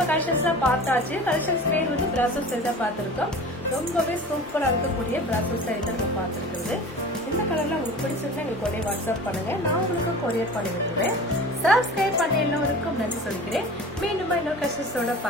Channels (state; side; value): normal; both; correlation 0.38